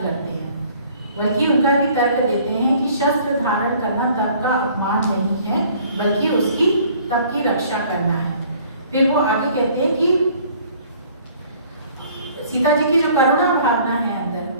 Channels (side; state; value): both; inverted; correlation -0.55